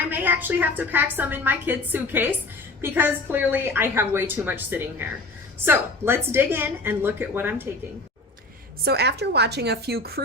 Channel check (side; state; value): right; quieter; 3.0 dB